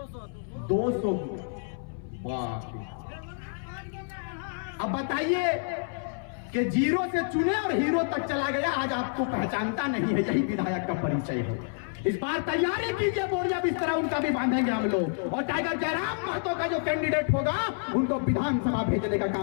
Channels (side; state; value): right; silent; 59 dB below the other